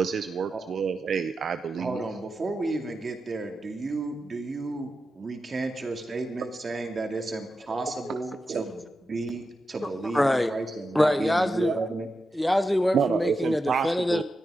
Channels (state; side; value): normal; both; correlation 0.89